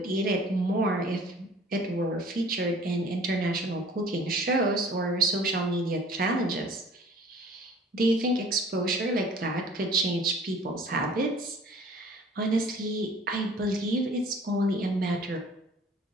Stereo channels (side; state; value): both; normal; correlation 0.50